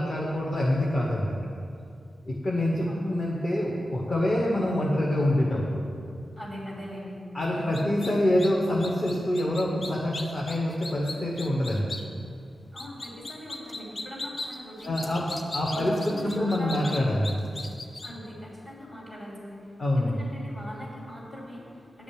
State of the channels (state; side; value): normal; both; correlation 0.92